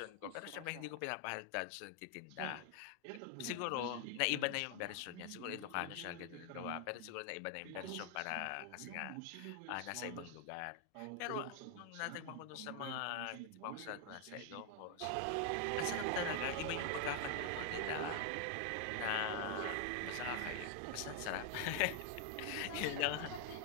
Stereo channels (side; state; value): both; different; correlation 0.00